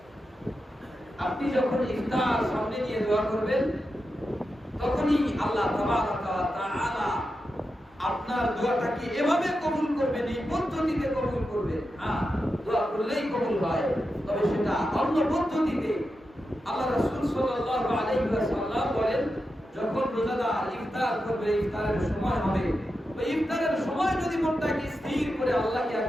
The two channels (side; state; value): both; normal; correlation 0.89